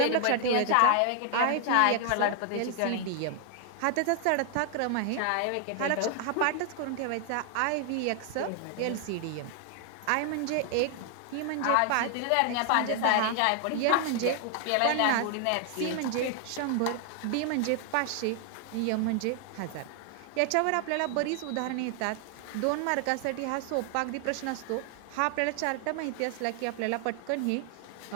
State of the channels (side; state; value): both; different; correlation 0.00